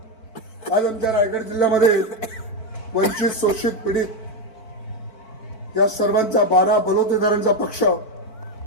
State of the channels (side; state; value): right; late; 4.5 ms